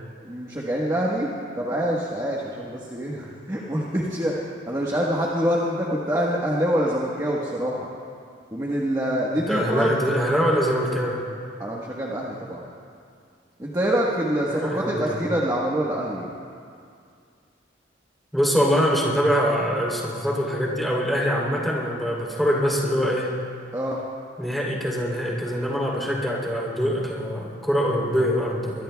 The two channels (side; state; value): both; normal; correlation 0.68